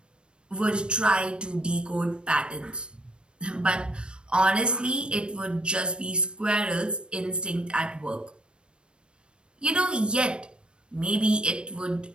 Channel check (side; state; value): left; late; 0.055 ms